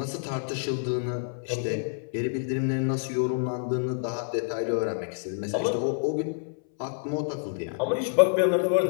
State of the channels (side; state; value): right; silent; 60 dB below the other